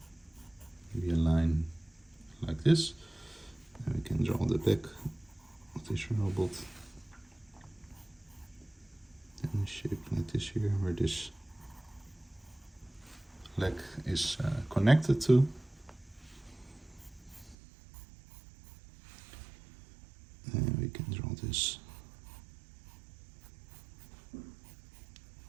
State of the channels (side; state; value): left; drops out; at 17.6 s